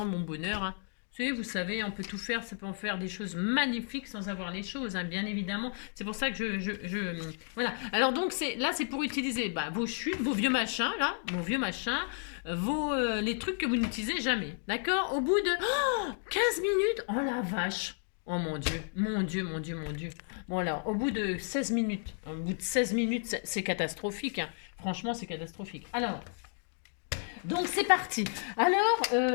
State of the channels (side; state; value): right; silent; 56 dB below the other